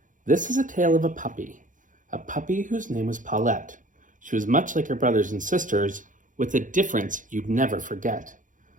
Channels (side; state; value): left; late; 0.38 ms